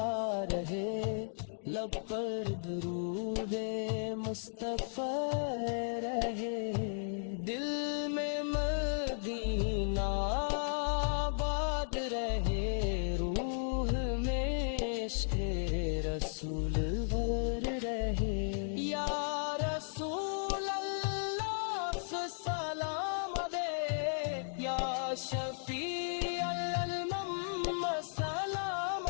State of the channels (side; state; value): right; silent; digital silence